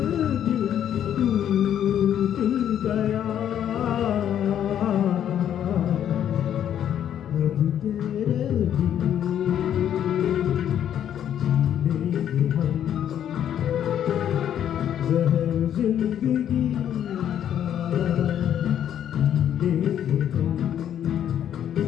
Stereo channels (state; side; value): quieter; right; 10.0 dB